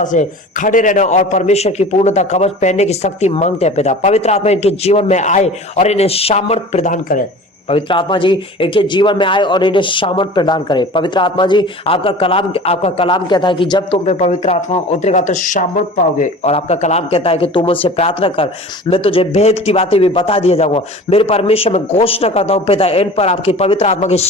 से खड़े रहना और परमेश्वर की पूर्णता कवच पहनने की शक्ति मांगते हैं पिता। पवित्र आत्मा इनके जीवन में आए और इन्हें सामर्थ प्रदान करे। पवित्र आत्मा जी इनके जीवन में आए और इन्हें सामर्थ प्रदान करे। पवित्र आत्मा जी, आपका कलाम कहता है कि जब तुम पे पवित्र आत्मा उतरेगा तो सामर्थ पाओगे, और आपका कलाम कहता है कि तुम मुझसे प्रार्थना कर, मैं तुझे भेद की बातें भी बता दिया जाऊंगा। मेरे परमेश्वर, में घोषणा करता हूँ पिता, इन पर आपकी पवित्र आत्मा की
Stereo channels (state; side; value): normal; both; correlation 0.40